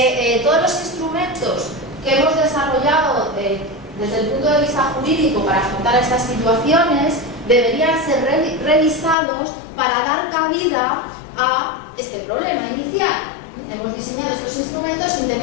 todos los instrumentos que hemos desarrollado desde el punto de vista jurídico para afrontar estas situaciones deberían ser revisados para dar cabida a este problema inicial. Hemos diseñado estos instrumentos sin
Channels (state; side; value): drops out; right; at 9.2 s